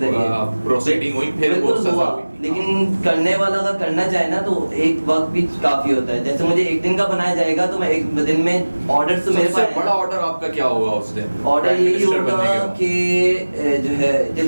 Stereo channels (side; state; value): both; inverted; correlation -1.00